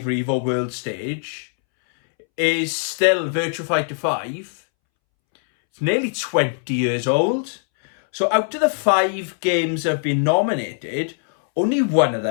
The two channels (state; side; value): silent; right; 65 dB below the other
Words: Revo World Stage is still Virtua Fighter 5. It's nearly 20 years old. So out of the 5 games that have been nominated, only one of